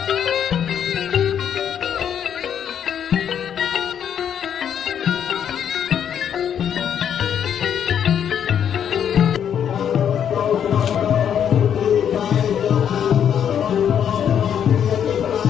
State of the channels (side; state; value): right; quieter; 8.8 dB